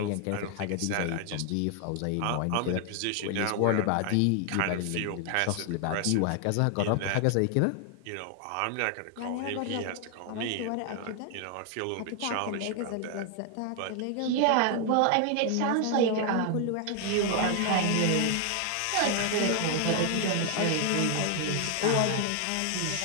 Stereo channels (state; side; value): different; both; correlation 0.00